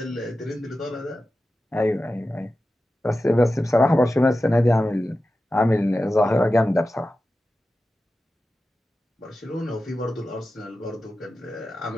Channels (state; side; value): normal; both; correlation 0.93